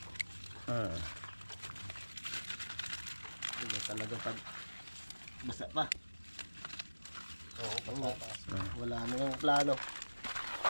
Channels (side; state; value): both; inverted; correlation -1.00